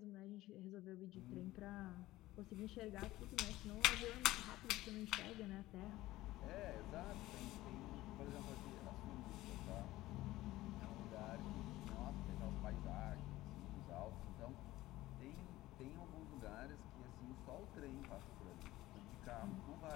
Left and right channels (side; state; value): right; quieter; 17.0 dB